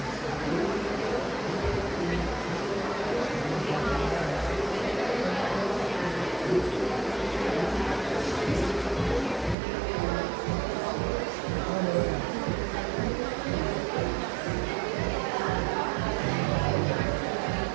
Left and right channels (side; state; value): left; drops out; at 9.6 s